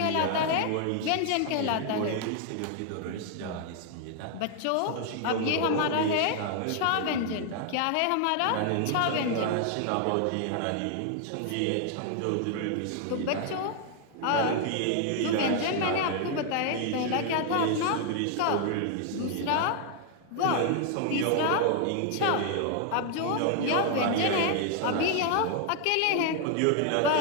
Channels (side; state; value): both; different; correlation 0.00